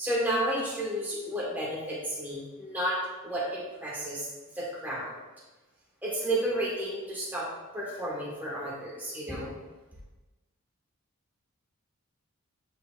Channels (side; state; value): both; normal; correlation 0.29